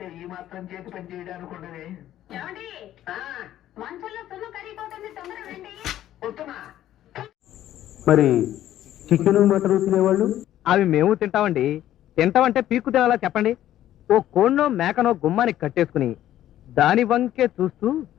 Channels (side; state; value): right; quieter; 12.7 dB